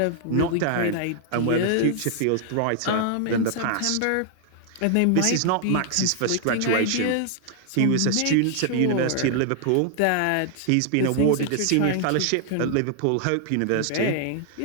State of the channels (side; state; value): both; different; correlation 0.00